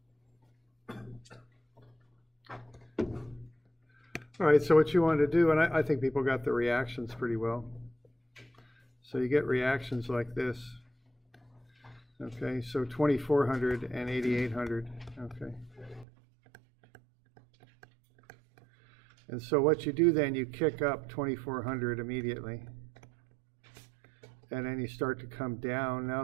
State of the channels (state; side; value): drops out; left; at 16.1 s